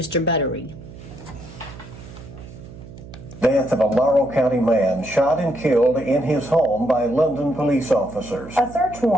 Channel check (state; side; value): noise; right; hum, 16 dB below the sound